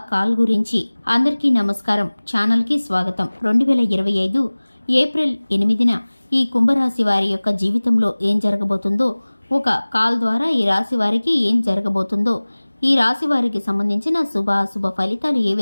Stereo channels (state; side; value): inverted; both; correlation -1.00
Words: కాల్ గురించి. అందరికీ నమస్కారం, ఛానల్కి స్వాగతం. 2025 ఏప్రిల్ 8న ఈ కుంభరాశి వారి యొక్క జీవితంలో ఏం జరగబోతుందో, ఒక కాల్ ద్వారా ఈ రాశి వారికి ఏం జరగబోతుందో, ఈ రాశి వారికి సంబంధించిన శుభాశుభ ఫలితాలు ఏ